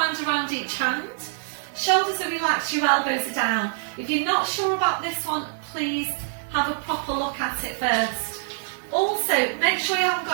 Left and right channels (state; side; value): silent; left; digital silence